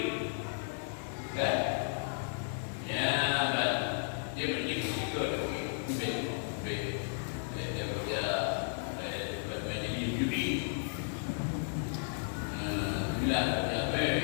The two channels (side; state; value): right; silent; digital silence